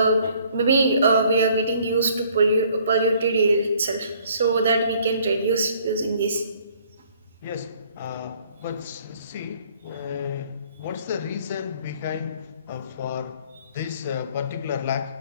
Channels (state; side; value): inverted; both; correlation -0.60